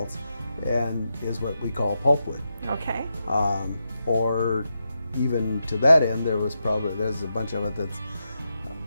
and is what we call pulpwood. Okay. Or even to that end, there's a bunch of it that's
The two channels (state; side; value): inverted; both; correlation -0.86